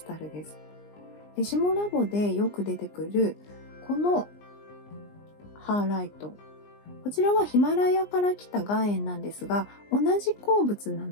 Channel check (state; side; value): late; right; 20 ms